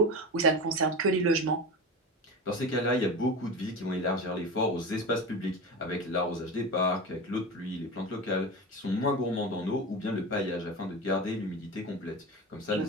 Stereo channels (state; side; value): normal; both; correlation 0.26